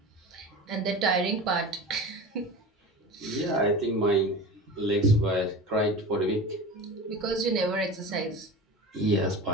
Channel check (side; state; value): both; normal; correlation 0.33